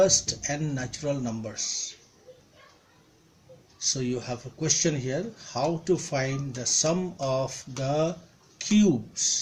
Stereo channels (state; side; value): identical; both; correlation 1.00